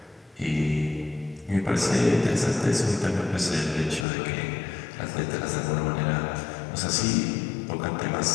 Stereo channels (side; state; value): right; drops out; at 4.0 s